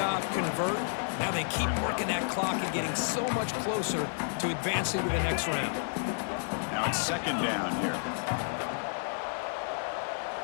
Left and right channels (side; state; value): right; silent; 57 dB below the other